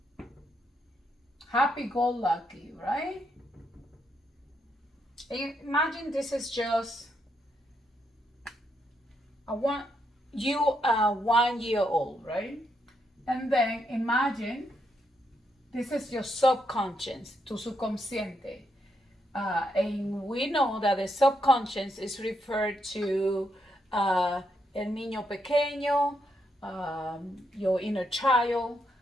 happy go lucky, right? Imagine this is just a one you are 1 year old, right? And then imagine this is your subconscious, tu subconsciente. And we know that the subconscious is referred to el niño pequeño, your inner child,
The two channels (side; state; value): both; normal; correlation 0.79